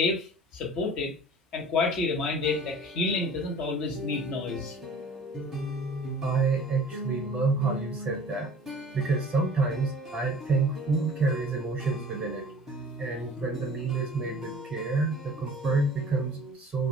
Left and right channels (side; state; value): both; normal; correlation 0.46